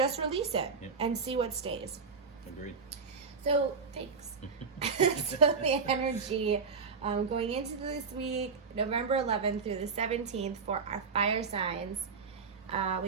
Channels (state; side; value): quieter; left; 5.2 dB